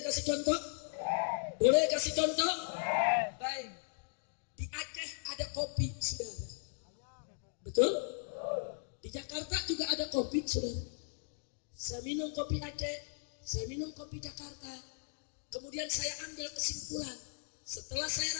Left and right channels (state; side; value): silent; right; digital silence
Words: kasih contoh? Boleh kasih contoh? Baik. Di Aceh ada kopi, saudara. Betul? Di Jakarta juga ada kopi, saudara. Saya minum kopi Aceh, saya minum kopi Jakarta. Kemudian saya ambil kesimpulan. Setelah saya